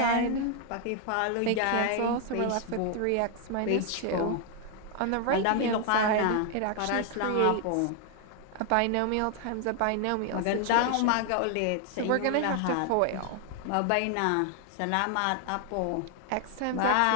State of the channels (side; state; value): both; different; correlation 0.00